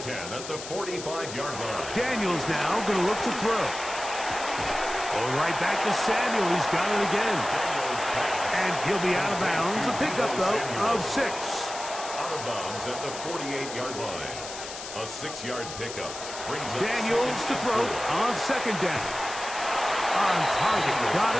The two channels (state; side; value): noise; left; hiss, 10 dB below the sound